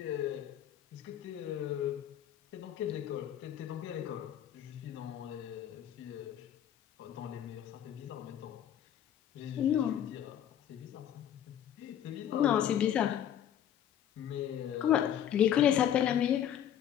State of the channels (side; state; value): right; quieter; 10.2 dB